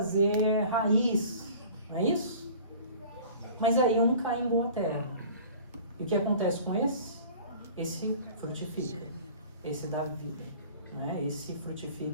raiz, não é isso? Mas aí um cai em boa terra. E o que acontece com esse? Esse frutifica, esse dá vida, né? Esse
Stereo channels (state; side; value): inverted; both; correlation -0.45